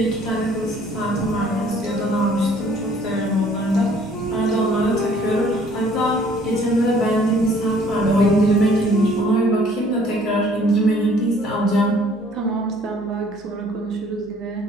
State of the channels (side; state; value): left; noise; hum, 28 dB below the sound